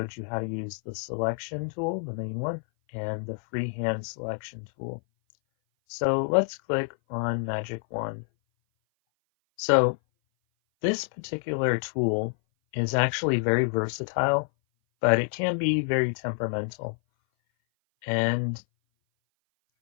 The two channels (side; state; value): right; silent; 57 dB below the other